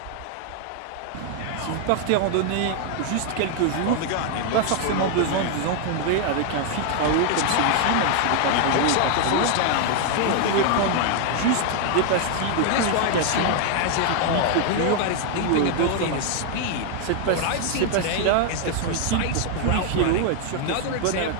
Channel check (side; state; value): both; different; correlation 0.00